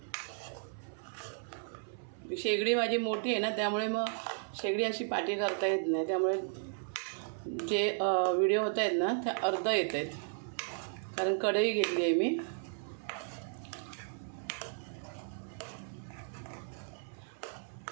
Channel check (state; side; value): silent; left; 55 dB below the other